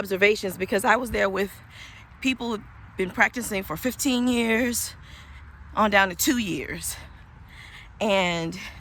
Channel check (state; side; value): identical; both; correlation 1.00